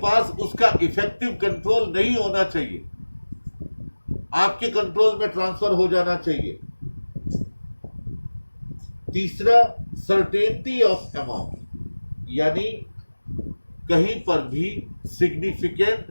उसका इफेक्टिव कंट्रोल नहीं होना चाहिए, आपके कंट्रोल में ट्रांसफर हो जाना चाहिए। तीसरा, सर्टेनिटी ऑफ अमाउंट, यानी कहीं पर भी सिग्निफिकेंट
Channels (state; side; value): inverted; both; correlation -1.00